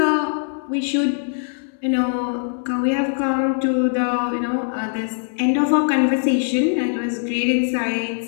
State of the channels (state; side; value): silent; right; 64 dB below the other